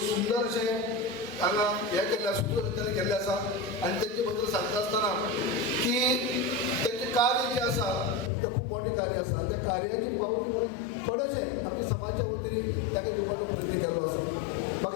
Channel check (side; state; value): right; drops out; at 8.3 s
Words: सुंदर अशें हांगा हें केल्लें सुत्रसंचालन केल्लें आसा आनी तेजे बद्दल सांगता आसतना की तेंचें कार्य जें आसा तें खूब मोठें कार्य आसा त्या कार्याची पावती थोडेशें आमच्या समाजाच्या वतीन ताका दिवपाचो प्रयत्न केल्लो आसा